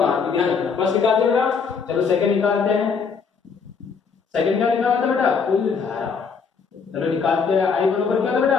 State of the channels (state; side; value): quieter; right; 5.6 dB